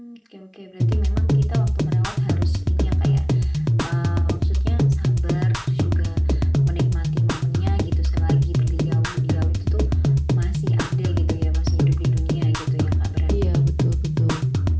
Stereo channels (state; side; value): identical; both; correlation 1.00